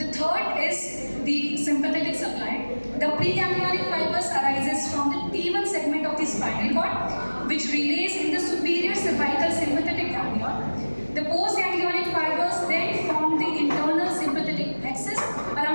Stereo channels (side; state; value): both; inverted; correlation -1.00